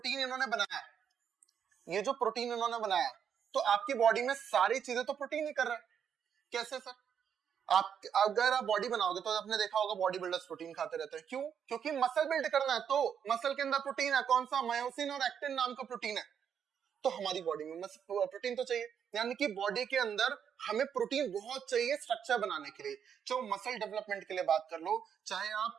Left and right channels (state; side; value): quieter; left; 8.0 dB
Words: इन्होंने बनाया, तो आपकी बॉडी में सारी चीजें तो प्रोटीन ही कर रहा है। कैसे सर, आप अगर आप बॉडी बनाओगे तो आपने देखा होगा बॉडी बिल्डर्स प्रोटीन खाते रहते हैं, क्यों, क्योंकि मसल बिल्ड करना है, तो मसल के अंदर प्रोटीन है, कौन सा, मायोसिन और एक्टिन नाम का प्रोटीन है। तो हमारी बॉडी में प्रोटीन तो चाहिए, यानी कि बॉडी के अंदर हमें प्रोटीन बहुत चाहिए स्ट्रक्चर बनाने के लिए। चाहे मसल डेवलपमेंट के लिए बात कर लो, चाहे